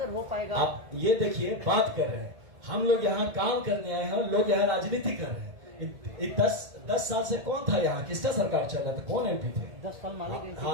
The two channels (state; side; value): late; left; 2.1 ms